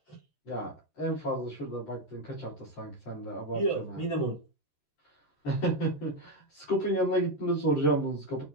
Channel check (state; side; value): late; right; 13 ms